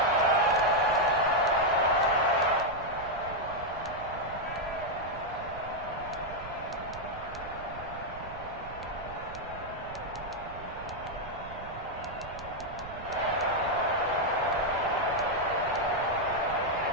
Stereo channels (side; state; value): right; noise; rumble, 14 dB below the sound